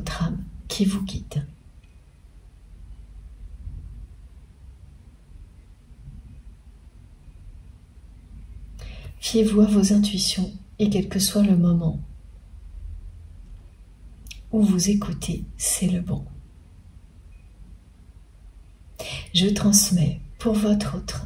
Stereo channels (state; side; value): identical; both; correlation 1.00